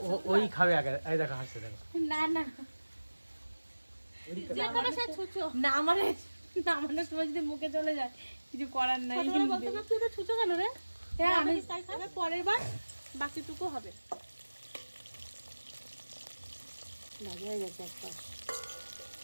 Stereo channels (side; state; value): both; inverted; correlation -1.00